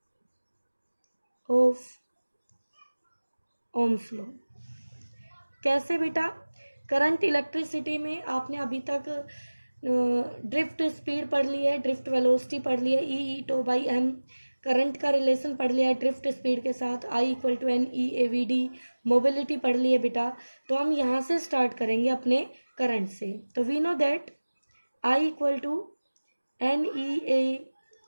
ऑफ ओम्स लॉ। कैसे बेटा? करंट इलेक्ट्रिसिटी में आपने अभी तक ड्रिफ्ट स्पीड पढ़ ली है, ड्रिफ्ट वेलोसिटी पढ़ ली है EE/m। करंट का रिलेशन पढ़ लिया है ड्रिफ्ट स्पीड के साथ I = NEAVD। मोबिलिटी पढ़ ली है बेटा। तो हम यहाँ से स्टार्ट करेंगे अपने करंट से। तो we know that I = NEAVD।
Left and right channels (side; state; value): both; inverted; correlation -1.00